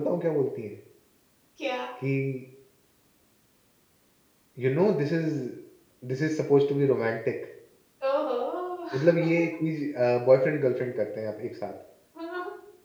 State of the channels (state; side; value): identical; both; correlation 1.00